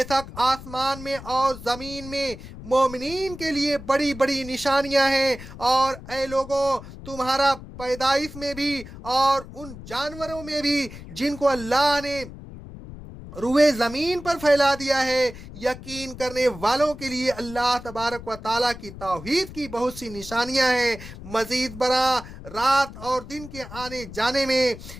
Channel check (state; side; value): noise; left; rumble, 14 dB below the sound